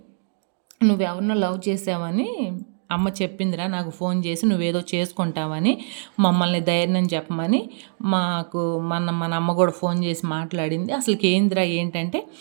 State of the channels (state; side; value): silent; left; digital silence